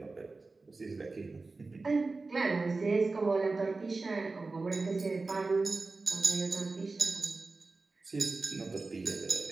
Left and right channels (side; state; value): left; quieter; 3.7 dB